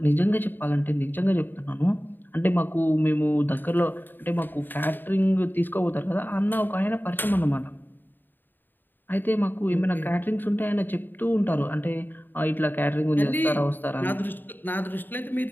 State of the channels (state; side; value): late; right; 0.092 ms